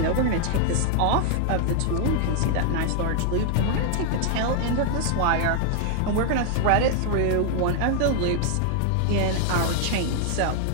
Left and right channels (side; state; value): both; different; correlation -0.01